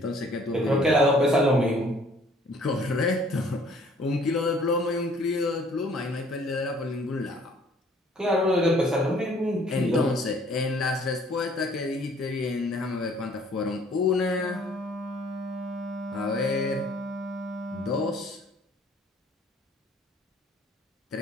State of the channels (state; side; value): normal; both; correlation 0.57